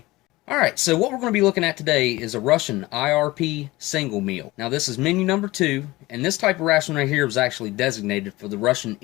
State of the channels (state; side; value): quieter; right; 19.9 dB